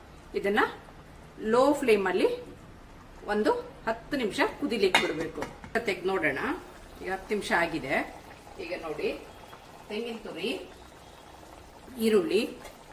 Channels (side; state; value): both; identical; correlation 1.00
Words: ಇದನ್ನು ಲೋ ಫ್ಲೇಮಲ್ಲಿ ಒಂದು 10 ನಿಮಿಷ ಕುದಿಲಿಕ್ಕೆ ಬಿಡಬೇಕು. ತೆಗೆದು ನೋಡೋಣ. ಈಗ 10 ನಿಮಿಷ ಆಗಿದೆ. ಈಗ ನೋಡಿ, ತೆಂಗಿನ ತುರಿ, ಈರುಳ್ಳಿ